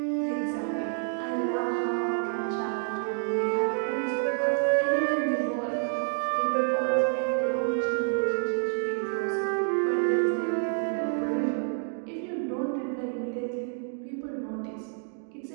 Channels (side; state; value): left; silent; 59 dB below the other